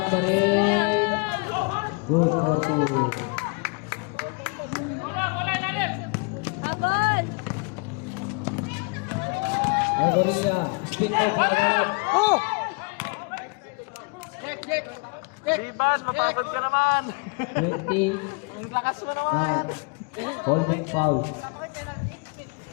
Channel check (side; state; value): right; quieter; 32.3 dB